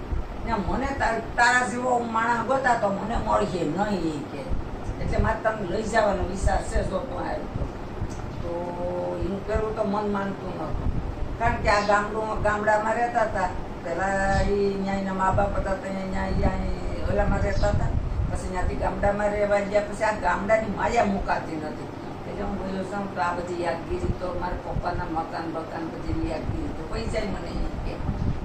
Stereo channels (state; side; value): identical; both; correlation 1.00